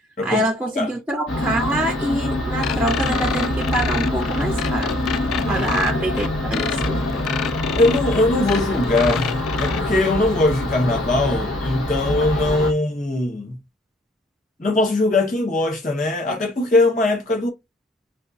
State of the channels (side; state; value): both; normal; correlation 0.60